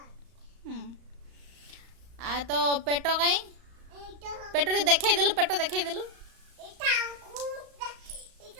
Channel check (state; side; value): late; left; 35 ms